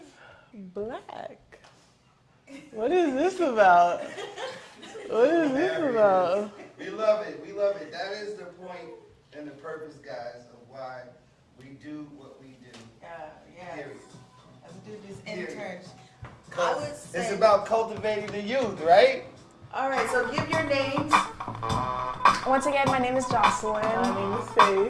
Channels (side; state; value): both; identical; correlation 1.00